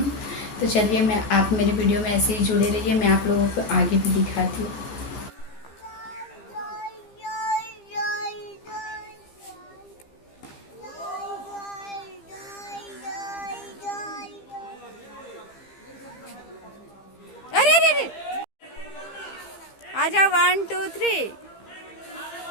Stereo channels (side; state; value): right; late; 15 ms